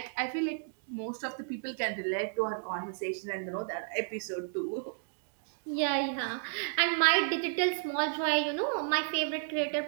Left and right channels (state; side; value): silent; left; digital silence